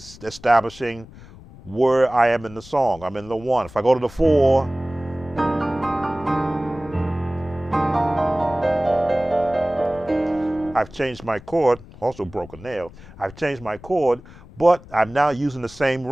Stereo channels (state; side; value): noise; left; rumble, 20 dB below the sound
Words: establishing where I am in the song. I'm in the one. If I go to the four, I've changed my chord, also broke a nail. I've changed my chord, but I'm now using the same